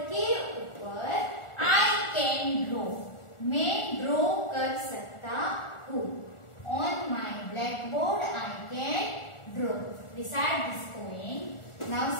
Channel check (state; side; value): late; right; 1.4 ms